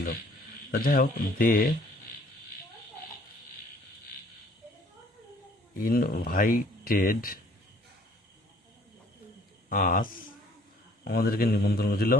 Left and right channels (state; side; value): normal; both; correlation 0.58